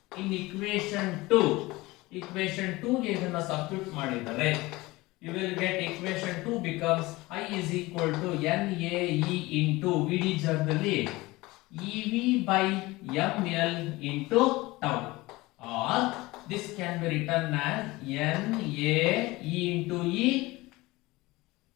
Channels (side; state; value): right; quieter; 20.8 dB